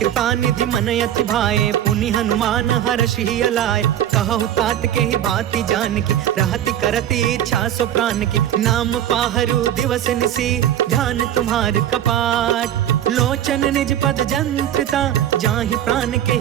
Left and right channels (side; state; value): left; quieter; 11.1 dB